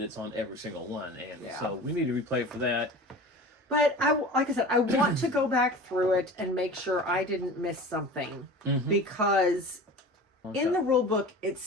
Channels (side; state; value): both; normal; correlation 0.37